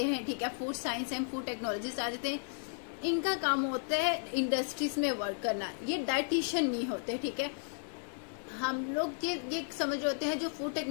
हैं, ठीक है। Food science and food technologist आ जाते हैं। इनका काम होता है इंडस्ट्रीज में वर्क करना, ये डाइटिशियन नहीं होते, ठीक है। हम लोग ये समझ रहे होते हैं जो फूड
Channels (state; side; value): silent; right; 55 dB below the other